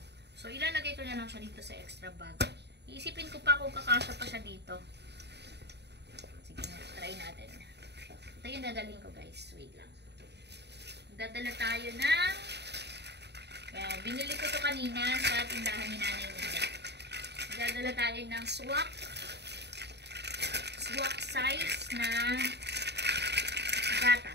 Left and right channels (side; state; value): left; late; 0.49 ms